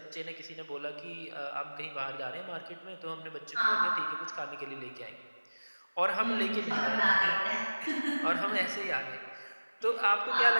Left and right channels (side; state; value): both; inverted; correlation -1.00